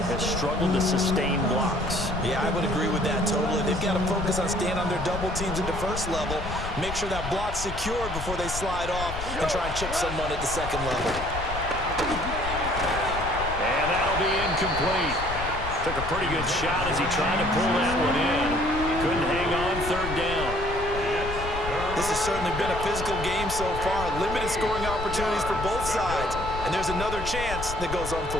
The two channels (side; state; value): left; noise; rumble, 7 dB below the sound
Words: has struggled to sustain blocks. Yeah, I would agree with that totally. They've got to focus on staying on their double teams at the first level, make sure that block's secured before they slide off and try and chip someone at the second level. And that'll be incomplete. Took a pretty good shot as he tried to pull that one in. Couldn't hang on 3rd down. This has certainly been a physical game so far. Limited scoring opportunities for both sides. And there's another chance that goes